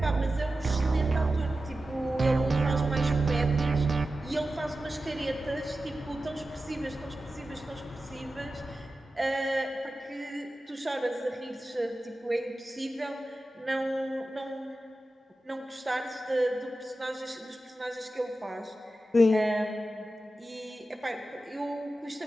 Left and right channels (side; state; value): both; normal; correlation 0.93